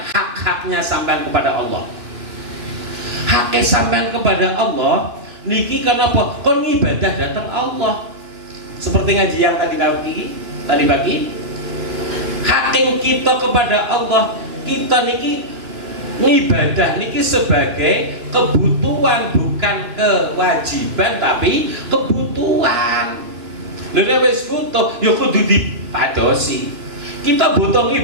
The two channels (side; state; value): left; late; 2.7 ms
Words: hak-haknya sampean kepada Allah? Haknya sampean kepada Allah niki kenapa? Kon ibadah datang Allah. Seperti ngaji yang tadi pagi. Haknya kita kepada Allah, kita niki ibadah niki sebagai kebutuhan, bukan kewajiban tapi kebutuhan. Lha wis butuh ya kudu dipadosi. Kita butuh